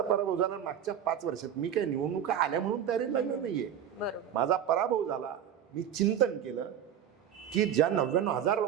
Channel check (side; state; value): left; quieter; 9.4 dB